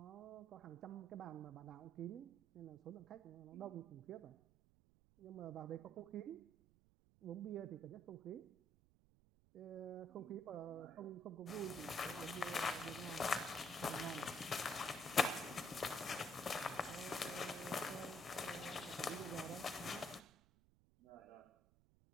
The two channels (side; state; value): right; noise; rumble, 28 dB below the sound